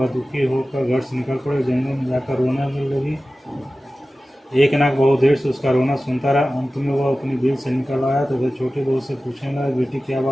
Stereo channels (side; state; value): both; normal; correlation 0.96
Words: दुखी होकर घर से निकल पड़े, जंगल में जाकर रोने लगी। एक नाग बहुत देर से उसका रोना सुनता रहा। अंत में वह अपनी बिल से निकल आया तो वह छोटी बहू से पूछने लगा, बेटी क्या